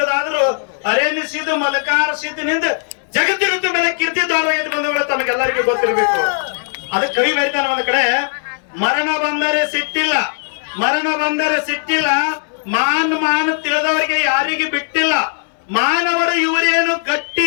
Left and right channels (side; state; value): right; silent; 64 dB below the other